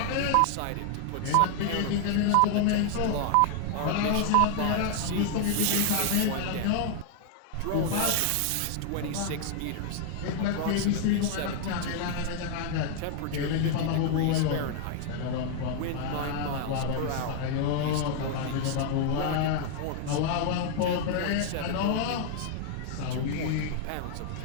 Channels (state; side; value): different; both; correlation 0.00